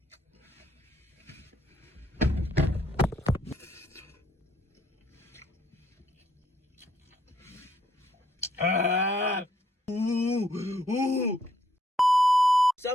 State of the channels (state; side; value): normal; both; correlation 0.71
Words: Ah! Ooh! Sa